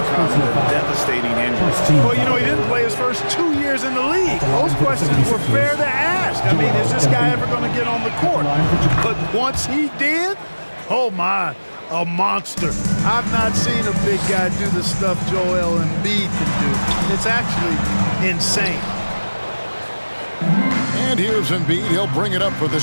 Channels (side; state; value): both; inverted; correlation -1.00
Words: the devastating injuries. Well, you know, he didn't play his first 2 years in the league. Those questions were fair to ask. I mean, is this guy ever going to get on the court? But once he did, oh my, a monster. I've not seen a big guy do the stuff Joel Embiid can do. It's actually insane. And here's Embiid. He'll bring it up for the